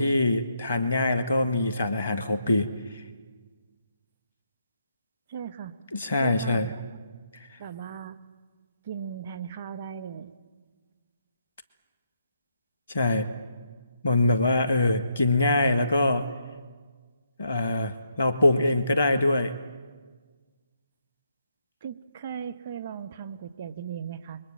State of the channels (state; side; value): inverted; both; correlation -0.76